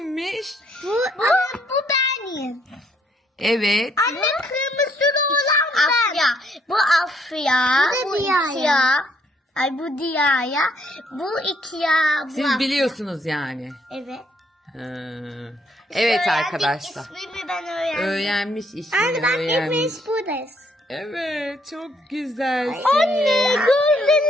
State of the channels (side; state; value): both; normal; correlation 0.69